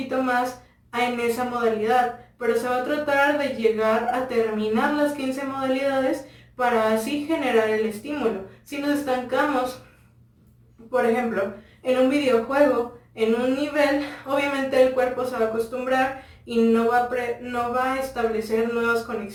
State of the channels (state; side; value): identical; both; correlation 1.00